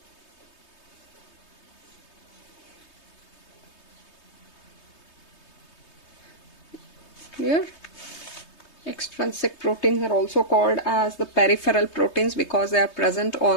Clear? Extrinsic proteins are also called as the peripheral proteins because they are present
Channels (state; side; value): late; right; 3.2 ms